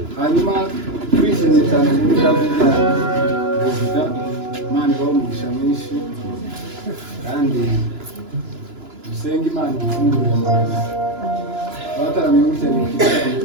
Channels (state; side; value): late; left; 2.9 ms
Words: hanyuma twishimye cyane muri kazi bya perezida Imana ibaho umugisha mwinshi kandi dusenga Imana ifungurira amahanga abataramiye gutya ni ikibazo